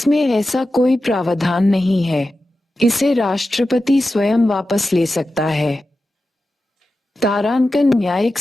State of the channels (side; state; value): both; normal; correlation 0.92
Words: ऐसा कोई प्रावधान नहीं है। इसे राष्ट्रपति स्वयं वापस ले सकता है। तारांकन न्यायिक